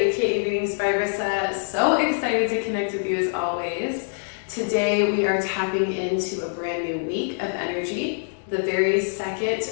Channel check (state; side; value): silent; right; digital silence